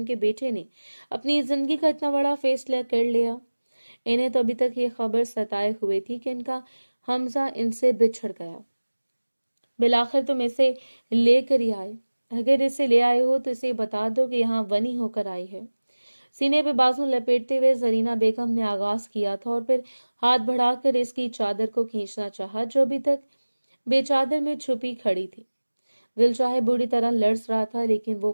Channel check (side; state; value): both; inverted; correlation -1.00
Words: बेटे ने अपनी जिंदगी का इतना बड़ा फैसला कर लिया। इन्हें तो अभी तक ये खबर सताए हुए थी कि इनका हमजा इनसे बिछड़ गया। बिलाखिर तुम इसे लेकर ही आए। अगर इसे ले आए हो तो इसे बता दो कि यहाँ वनी होकर आई है। सीने पे बाजू लपेटते हुए जरीना बेगम ने आगाज किया था और फिर हाथ बढ़ाकर इसकी चादर को खींचना चाहा, जो अभी तक बेचादर में छुपी खड़ी थी। दिल चाहे बुरी तरह लड़स रहा था, लेकिन वो